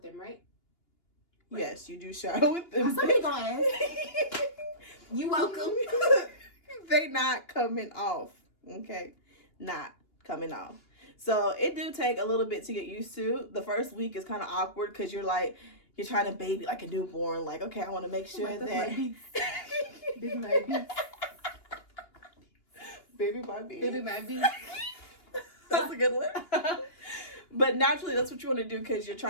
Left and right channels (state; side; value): late; right; 2.8 ms